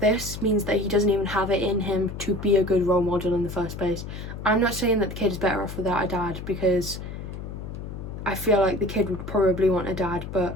this means that he doesn't even have it in him to be a good role model in the first place. I'm not saying that the kid is better off without a dad, because I feel like the kid would probably want a dad, but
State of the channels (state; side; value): noise; left; hum, 9 dB below the sound